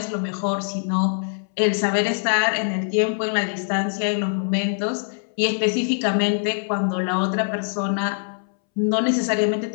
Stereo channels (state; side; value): silent; right; 63 dB below the other